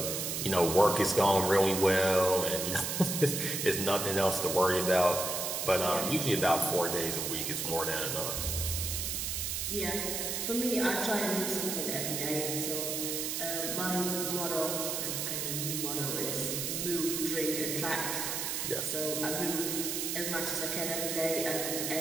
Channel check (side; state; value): right; noise; hiss, 2 dB below the sound